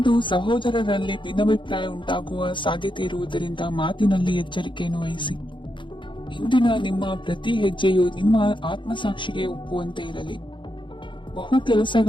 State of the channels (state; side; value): late; right; 0.23 ms